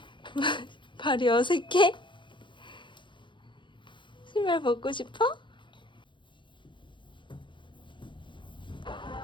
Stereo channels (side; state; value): right; late; 0.23 ms